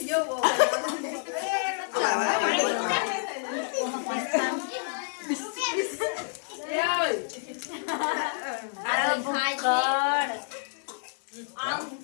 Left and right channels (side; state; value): right; silent; digital silence